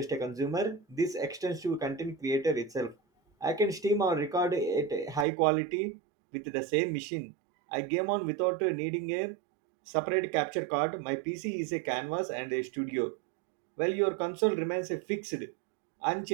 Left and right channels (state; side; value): drops out; left; at 5.2 s